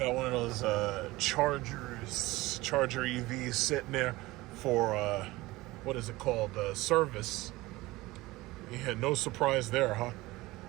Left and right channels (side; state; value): left; quieter; 19.6 dB